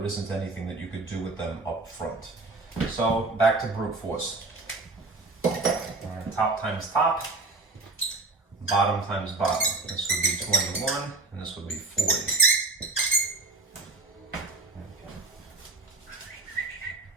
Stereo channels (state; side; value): quieter; left; 3.3 dB